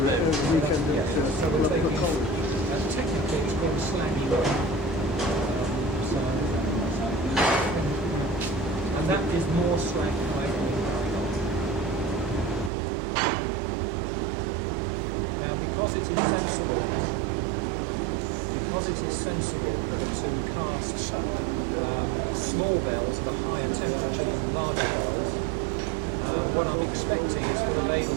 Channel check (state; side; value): drops out; left; at 12.7 s